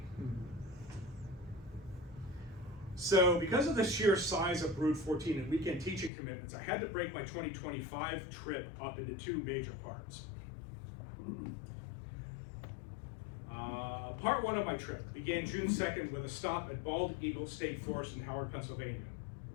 So because of the sheer size of brood 14 and weekend teaching commitments, I had to break my 2025 trip up into 2 major parts. Part 1 of my trip began June 2nd with a stop at Bald Eagle State Forest in Howard, Pennsylvania.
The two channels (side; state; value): right; drops out; at 6.1 s